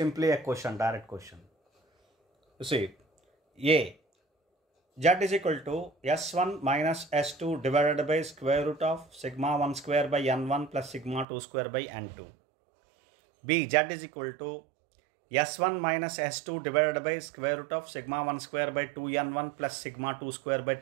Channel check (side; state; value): left; drops out; at 11.2 s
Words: a question, direct question. You see, A, Z is equal to S1 minus S2 divided by square root of sigma 1 square by N1 plus sigma 2 square by N2. B, Z is equal to S1 minus S2 divided by square root of sigma 1 square by 2N1 plus sigma 2 square by